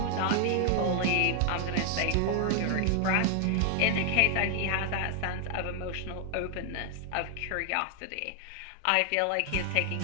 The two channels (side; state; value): both; different; correlation 0.00